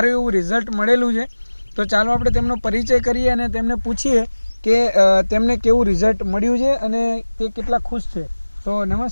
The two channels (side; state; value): both; inverted; correlation -1.00